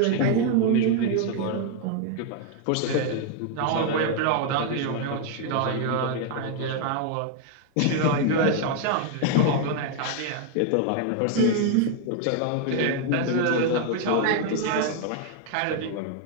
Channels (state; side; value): different; both; correlation 0.00